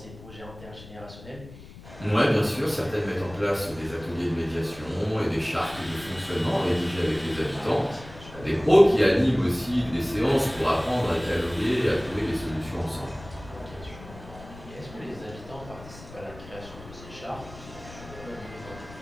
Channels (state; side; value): noise; left; rumble, 17 dB below the sound